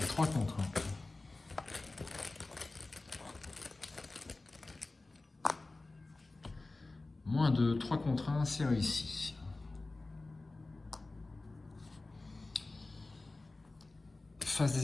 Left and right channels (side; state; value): right; quieter; 3.2 dB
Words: à 3 contre 1. -2, 3 contre 1, c'est réussi. Phase